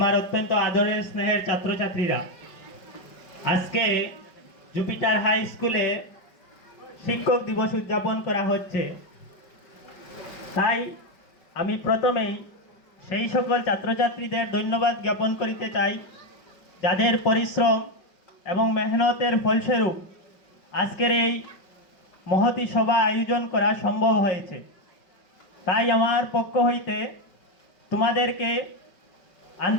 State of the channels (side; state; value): right; late; 5.2 ms